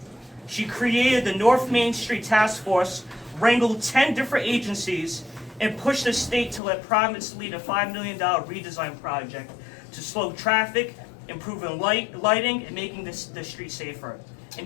She created the North Main Street Task Force, wrangled 10 different agencies, and pushed the state to let Providence lead a $5 million redesign project to slow traffic, improving lighting, and making the street safer. And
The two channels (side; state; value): right; drops out; at 6.6 s